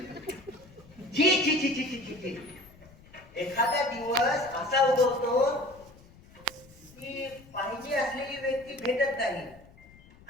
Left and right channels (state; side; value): noise; left; rumble, 24 dB below the sound